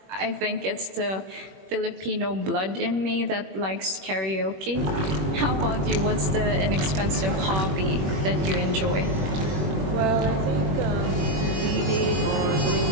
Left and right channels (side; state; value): left; late; 21 ms